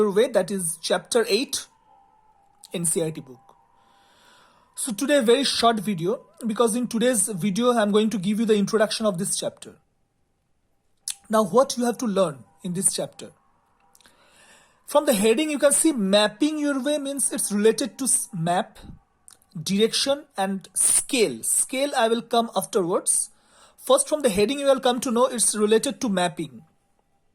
Way, that is chapter 8 NCERT book. So today a very short video, because in today's video I am going to give you the introduction of this chapter. Now what you have to learn in this chapter? From the heading you can see Mapping Your Way means it's related to map, direction and scale. Scale I will come afterwards. First from the heading you will come to know it's related to mapping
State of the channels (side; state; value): both; identical; correlation 1.00